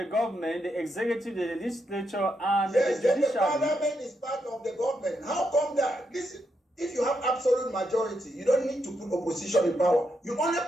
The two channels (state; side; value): normal; both; correlation 0.81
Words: government: the executive, the legislature, and the judiciary. Yes, the parliament is part of the government. How come that? Listen, if you have absolute majority, you don't need to put opposition in power. You only